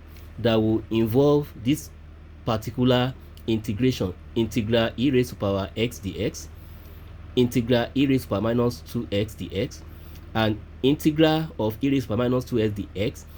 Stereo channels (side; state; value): both; identical; correlation 1.00